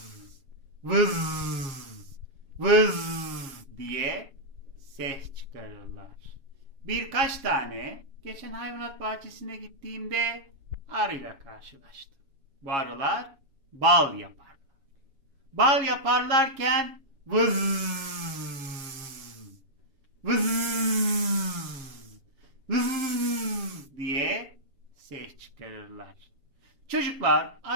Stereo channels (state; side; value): late; left; 7.2 ms